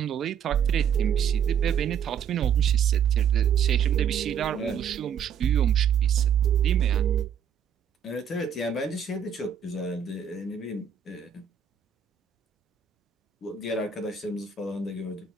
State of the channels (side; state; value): left; quieter; 8.0 dB